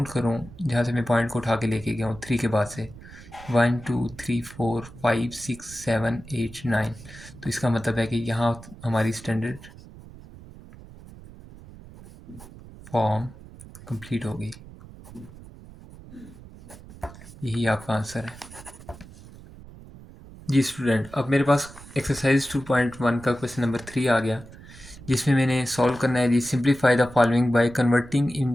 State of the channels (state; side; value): noise; right; rumble, 18 dB below the sound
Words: करूँ, जहाँ से मैं पॉइंट को उठा के लेके गया हूँ 3 के बाद से, 1 2 3 4 5 6 7 8 9, तो इसका मतलब है कि यहाँ हमारी स्टैंडर्ड फॉर्म कंप्लीट हो गई, यही आपका आंसर है जी स्टूडेंट। अब मेरे पास एक्सरसाइज 2.1 का क्वेश्चन नंबर 3 आ गया, जिसमें मैंने सॉल्व करना है जी simplify the following by converting